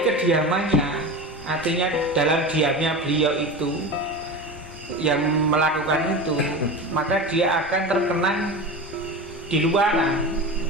kediamannya, artinya dalam diamnya beliau itu yang melakukan itu, maka dia akan terkenang di luaran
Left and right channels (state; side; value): normal; both; correlation 0.28